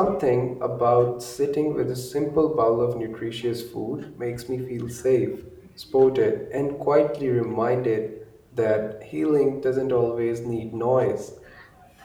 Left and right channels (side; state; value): both; identical; correlation 1.00